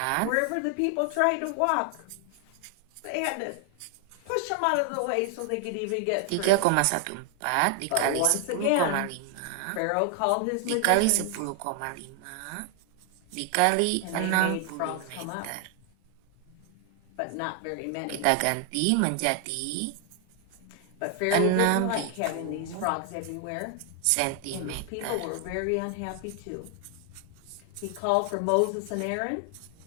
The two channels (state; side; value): different; both; correlation 0.00